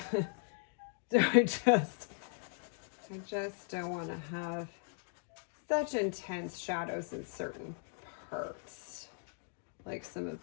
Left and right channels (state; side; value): silent; right; 53 dB below the other